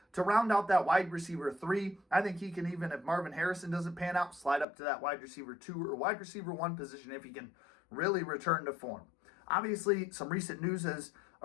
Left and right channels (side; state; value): right; drops out; at 4.7 s